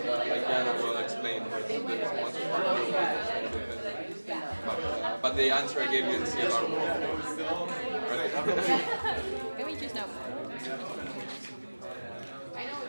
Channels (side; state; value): both; inverted; correlation -1.00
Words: like Jana will explain the response part, but the answer I gave you in CLR Can we choose now? I know